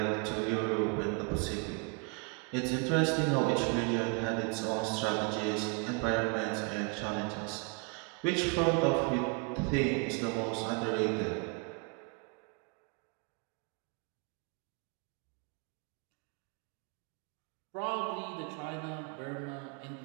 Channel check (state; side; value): quieter; left; 34.1 dB